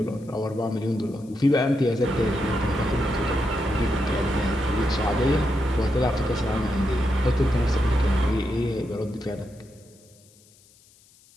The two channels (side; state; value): left; noise; hiss, 29 dB below the sound